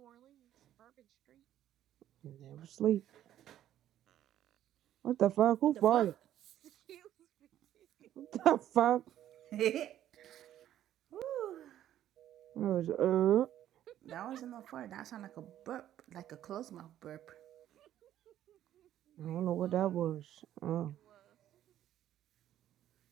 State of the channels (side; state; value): left; quieter; 11.8 dB